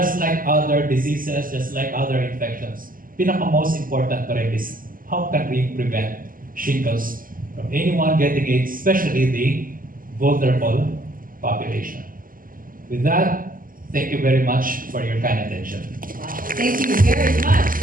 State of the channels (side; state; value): left; late; 0.41 ms